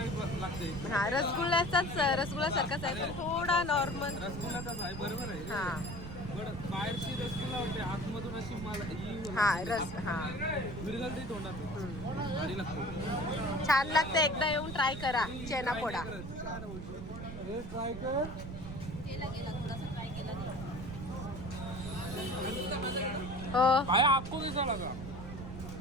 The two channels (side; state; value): right; noise; rumble, 9 dB below the sound